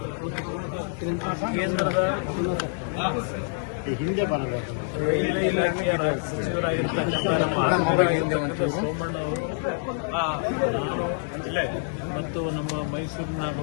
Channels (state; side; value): silent; right; digital silence